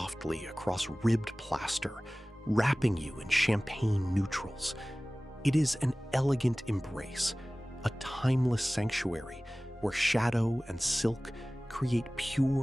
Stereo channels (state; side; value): normal; both; correlation 0.98